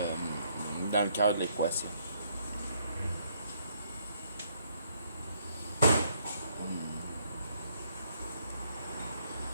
cœur de l'équation.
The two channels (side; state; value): both; inverted; correlation -0.70